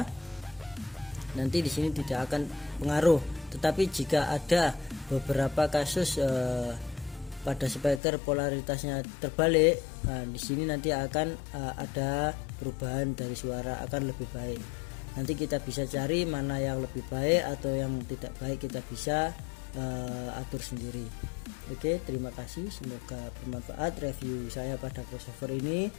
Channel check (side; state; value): right; drops out; at 8.0 s